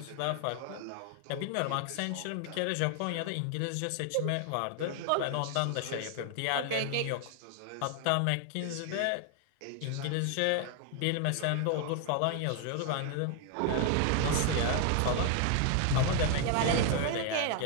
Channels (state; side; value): different; both; correlation 0.00